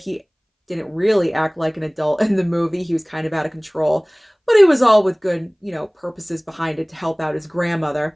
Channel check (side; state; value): both; identical; correlation 1.00